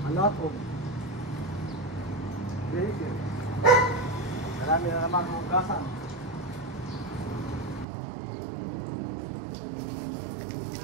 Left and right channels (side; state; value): left; drops out; at 7.9 s